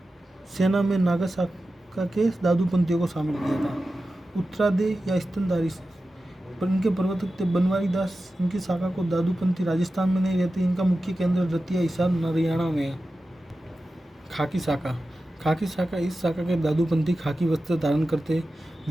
सेना में नागा शाखा के दादूपंथियों को शामिल किया था। उत्तरादे या स्तनधारी, पर इनके प्रवर्तक थे बनवारी दास। इनकी शाखा को दादूपंथी राजस्थान में नहीं रहते। इनका मुख्य केंद्र रतिया हिसार हरियाणा में है। खाकी शाखा, खाकी शाखा, इस शाखा के दादूपंथी खाकी वस्त्र धारण करते।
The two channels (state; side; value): normal; both; correlation 0.93